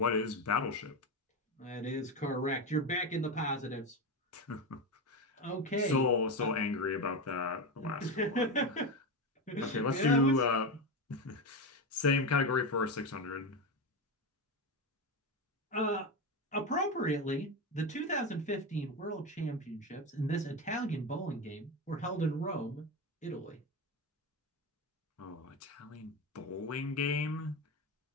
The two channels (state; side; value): normal; both; correlation 0.16